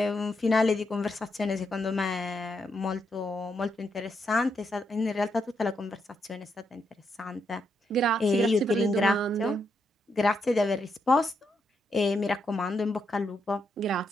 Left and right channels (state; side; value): normal; both; correlation 0.80